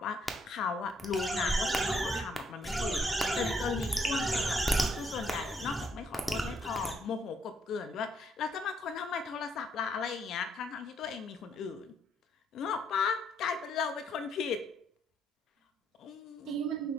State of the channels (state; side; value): normal; both; correlation 0.72